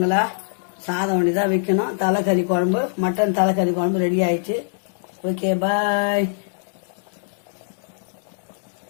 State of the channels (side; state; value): right; silent; digital silence